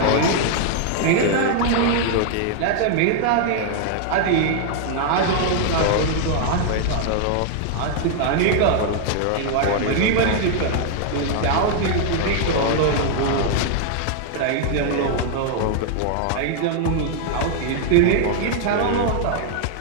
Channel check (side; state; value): both; different; correlation 0.00